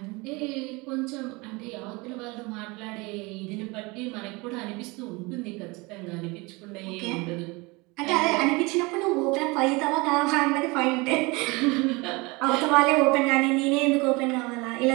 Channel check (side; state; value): left; quieter; 25.4 dB